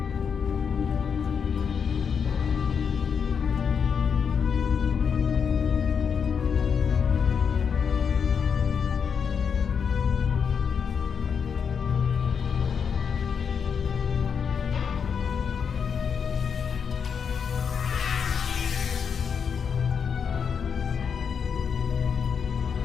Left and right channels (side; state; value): right; quieter; 6.7 dB